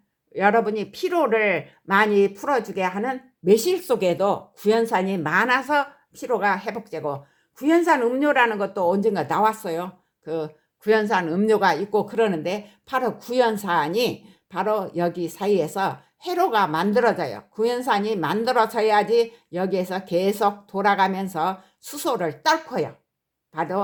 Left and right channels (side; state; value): both; identical; correlation 1.00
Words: 여러분이 피로를 많이 풀어주게 하는 매실 속에도 구연산이 많아서 피로가 회복되고 구연산 음료라는 것도 언젠가 나왔어요. 그 구연산 음료가 있고 그러는데 바로 구연산이 바로 여기 사이에서 회로가 만들어져요. 구연산이 만들어져야지 여기에서 계속 돌아가면서 수소를 떨고요.